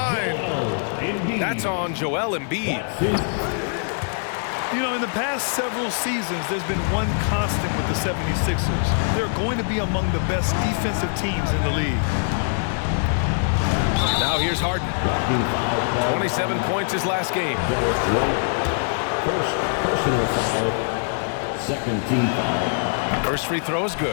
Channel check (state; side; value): silent; right; digital silence